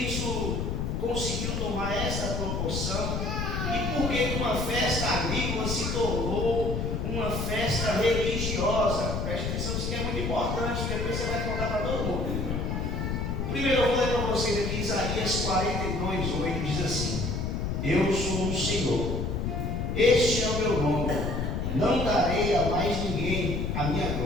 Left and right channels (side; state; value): left; noise; rumble, 1 dB below the sound